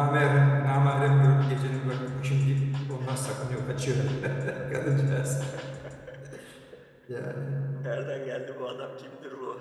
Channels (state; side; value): identical; both; correlation 1.00